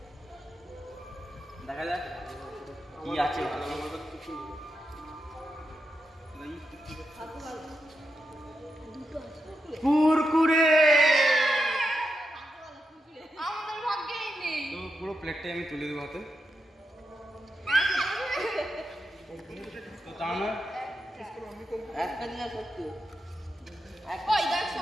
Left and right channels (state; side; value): normal; both; correlation 0.86